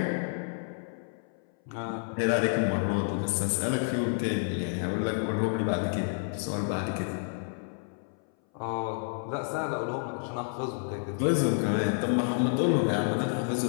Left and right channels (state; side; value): silent; right; 58 dB below the other